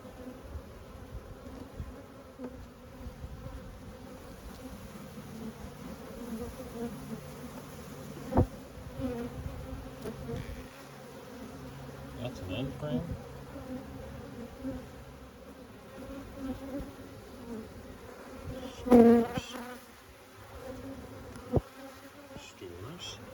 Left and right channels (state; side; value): identical; both; correlation 1.00